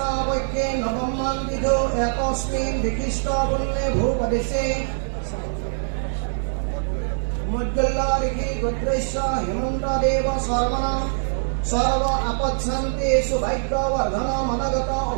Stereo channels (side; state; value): left; silent; digital silence